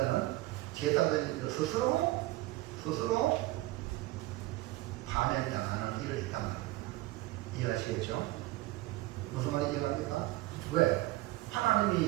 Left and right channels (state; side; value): quieter; left; 18.2 dB